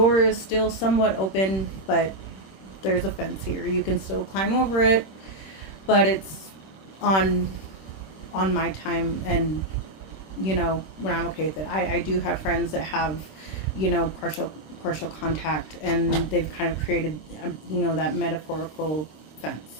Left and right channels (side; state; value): right; late; 26 ms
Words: is still somewhat open, but there's a fence here. You can still climb over it, but it's on my time, and you know, when I'm okay with it. I do have friends that have, you know, partial contact, and they've kind of created, you know, that metaphorical